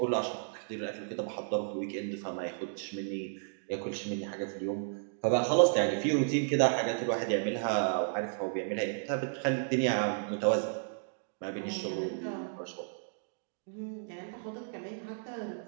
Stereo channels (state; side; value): silent; left; digital silence